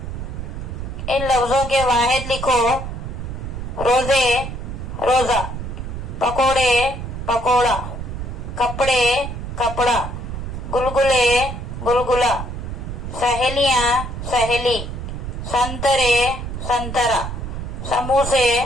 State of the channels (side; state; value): right; noise; rumble, 6 dB below the sound